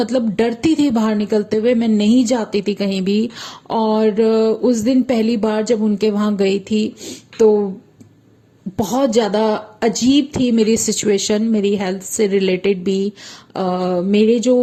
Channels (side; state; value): both; identical; correlation 1.00